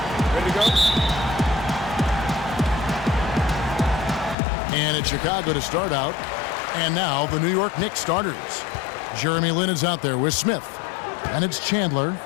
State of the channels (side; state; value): right; drops out; at 4.4 s